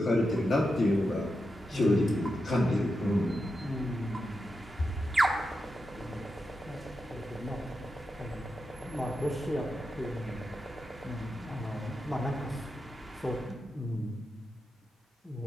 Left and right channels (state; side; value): normal; both; correlation 0.88